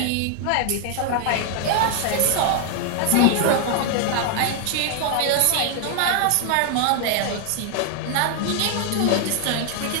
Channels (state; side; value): different; both; correlation 0.00